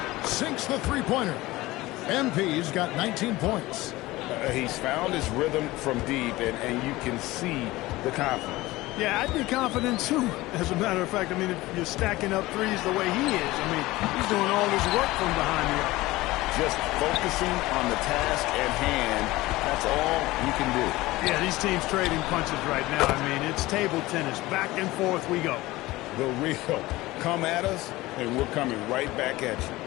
Sinks the three-pointer. MP's got 19 points. He's found his rhythm from deep, and you can see the confidence. Yeah, I'd be confident too. As a matter of fact, I mean, if you're stacking up threes the way he is, I mean, he's doing all his work from behind the arc. Just focusing on the task at hand, that's all you can do. Yeah, these teams trading punches right now. I mean, it's table tennis. Back and forth we go. The real come at us, and we're coming right back at you.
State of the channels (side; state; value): right; quieter; 19.0 dB